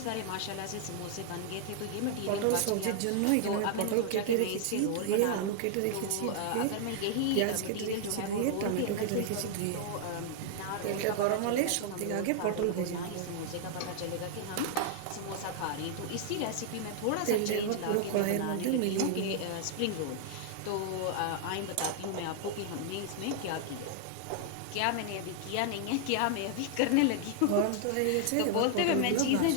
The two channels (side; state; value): both; different; correlation 0.00